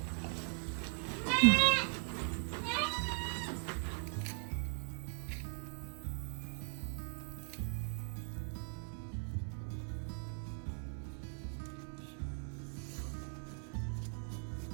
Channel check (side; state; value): left; silent; 51 dB below the other